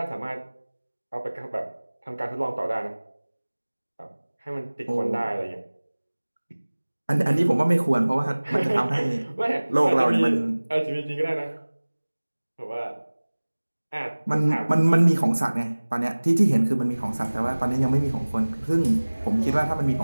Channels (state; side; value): inverted; both; correlation -1.00